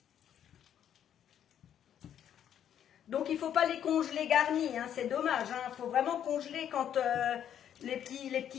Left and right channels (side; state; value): right; quieter; 9.8 dB